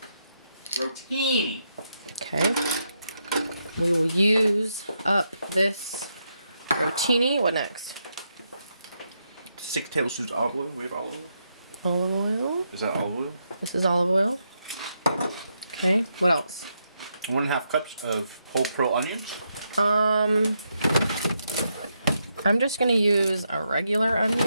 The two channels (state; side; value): inverted; both; correlation -0.81